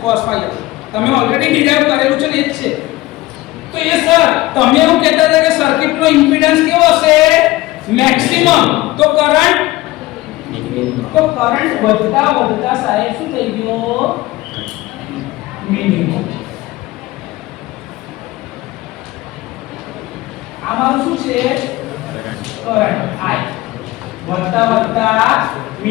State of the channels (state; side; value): quieter; right; 18.4 dB